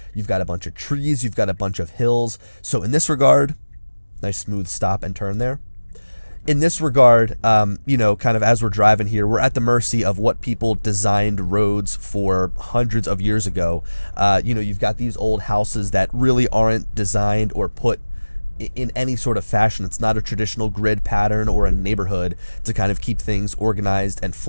You've got a bunch of trees, you've got a bunch of hills. So in this regard, nice smooth stop and turn there. In this regard, you know, kind of as we're driving here, we're at the mercy of what people designed roads for hundreds of years ago. You know, you've got these old houses that really aren't designed or put in any sort of fashion. It's not a traditional grid pattern or a neighborhood to kind of keep things organized and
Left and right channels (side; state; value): both; inverted; correlation -1.00